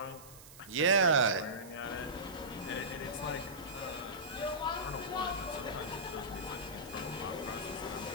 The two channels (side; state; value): right; noise; hiss, 18 dB below the sound